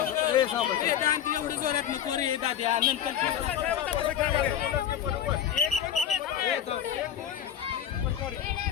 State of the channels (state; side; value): quieter; right; 9.8 dB